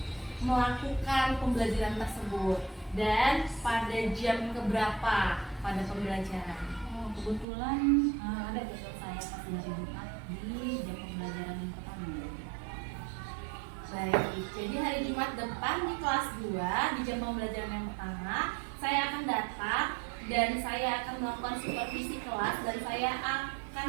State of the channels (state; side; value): drops out; left; at 7.5 s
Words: melakukan pembelajaran tersebut dan pada jam keberapa pada pembelajaran? Kebetulan ada jadwal saya pas hari Jumat di jam pembelajaran yang pertama. Baik, jadi hari Jumat depan di kelas 2 di jam pembelajaran yang pertama saya akan datang dan saya akan melakukan supervisi kelas, dan saya akan